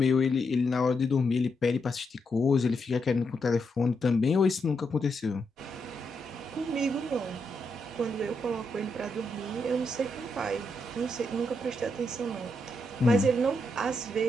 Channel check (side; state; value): both; normal; correlation 0.81